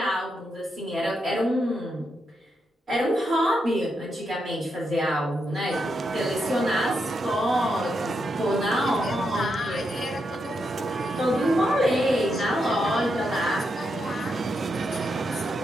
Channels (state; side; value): normal; both; correlation 0.83